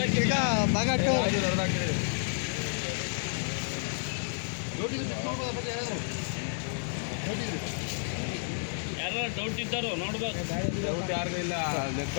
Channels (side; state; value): right; silent; 57 dB below the other